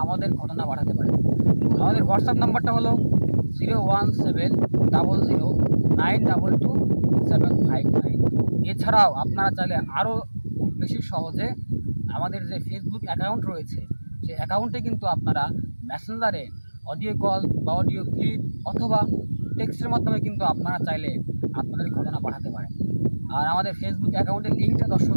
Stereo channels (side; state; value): both; inverted; correlation -1.00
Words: আমাদের ঘটনা পাঠাতে পারেন। আমাদের হোয়াটসঅ্যাপ নাম্বারটা হলো 01700922759। এছাড়াও আপনারা চাইলে আরও খুব বেশি সহজে আমাদের যে ফেসবুক অ্যাকাউন্ট রয়েছে সেই অ্যাকাউন্টে কিন্তু আপনারা মেসেঞ্জারে অডিও কল বা অডিও ক্লিপ অথবা টেক্সটের মাধ্যমে কিন্তু আপনারা চাইলে আপনাদের ঘটনা পাঠাতে পারেন। আর আমাদের ফেসবুক অ্যাকাউন্টের লিঙ্কটা দর্শক